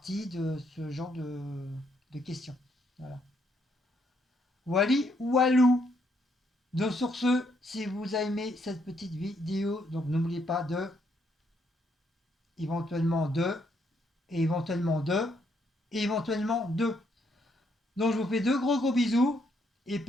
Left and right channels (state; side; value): normal; both; correlation 0.73